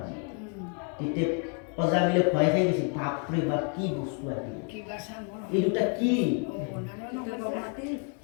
তেতিয়া অজামিলে ভয় খাই গৈছিল বাপৰে বাপ কি বস্তু আহিল এই দুটা কি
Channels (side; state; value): right; quieter; 39.7 dB